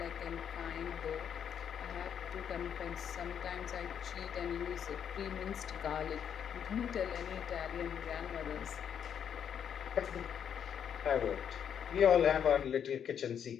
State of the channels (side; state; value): right; quieter; 8.3 dB